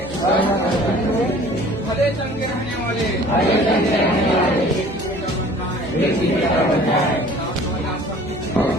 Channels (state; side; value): normal; both; correlation 0.49